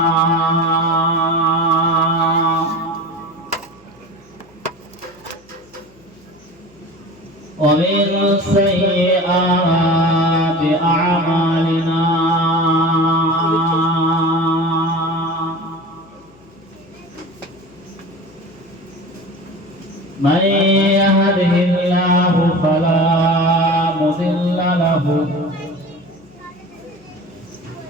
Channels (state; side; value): noise; left; hum, 30 dB below the sound